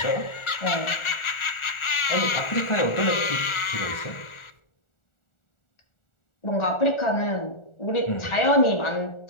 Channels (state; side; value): late; right; 1.4 ms